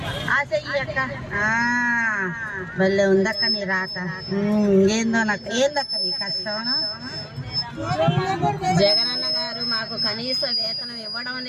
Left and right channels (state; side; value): identical; both; correlation 1.00